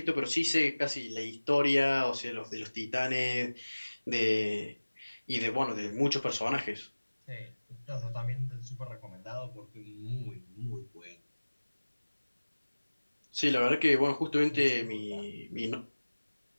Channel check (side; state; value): both; inverted; correlation -1.00